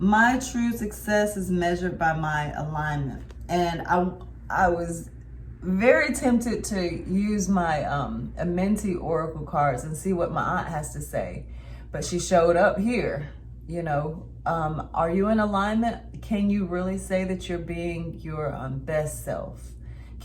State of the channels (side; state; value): both; identical; correlation 1.00